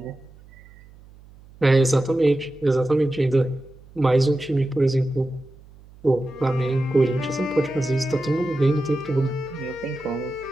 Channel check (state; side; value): noise; right; hum, 23 dB below the sound